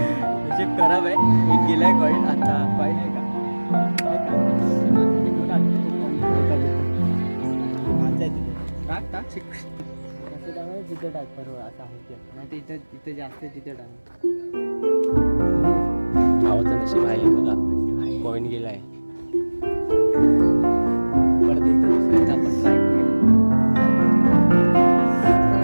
नशीब खराब आहे. एक गेलाय कॉईन. आता कॉईन आहे का टाक तिथे टाक बरोबर असं आहे. नाही तर इथं जास्त तिथे टाक. भावाचं नशीब आहे बघा. कॉइन गेलाय. परत एकदा दुसऱ्यांदा आपण ट्राय करूया.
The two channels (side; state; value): both; inverted; correlation -1.00